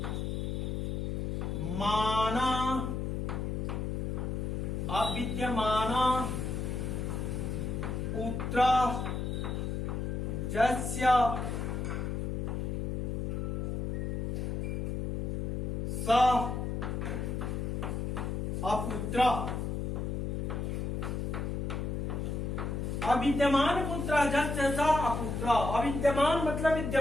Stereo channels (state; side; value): noise; left; hum, 1 dB below the sound